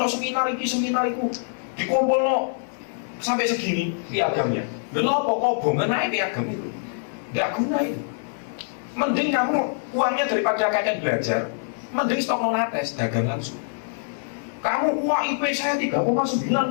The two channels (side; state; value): right; silent; digital silence